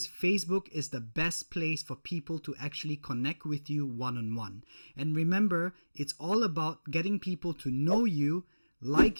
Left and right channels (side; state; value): both; inverted; correlation -1.00